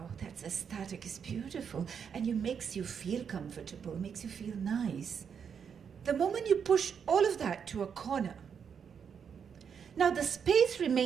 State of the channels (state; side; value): quieter; left; 7.1 dB